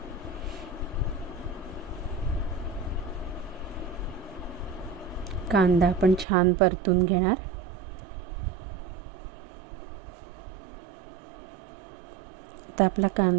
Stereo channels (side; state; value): left; drops out; at 6.2 s